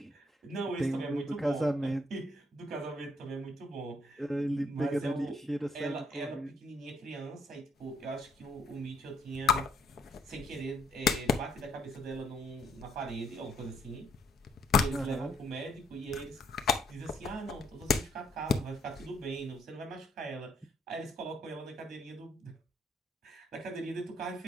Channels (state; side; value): normal; both; correlation 0.70